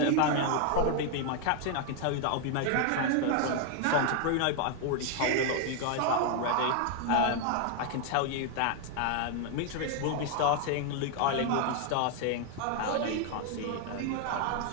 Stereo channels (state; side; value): different; both; correlation 0.00